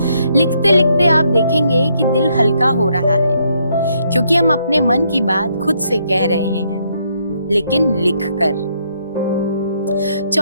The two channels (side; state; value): both; inverted; correlation -0.73